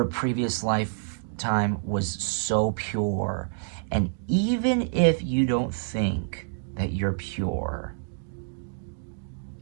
previous lifetime was so pure, and even if you don't think that you're pure,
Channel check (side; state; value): left; silent; digital silence